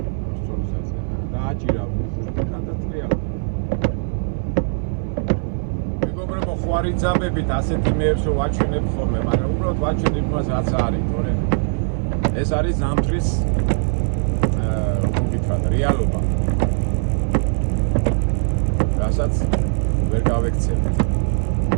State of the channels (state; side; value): silent; left; 57 dB below the other